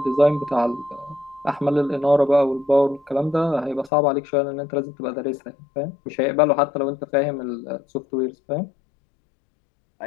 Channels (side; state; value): right; drops out; at 3.9 s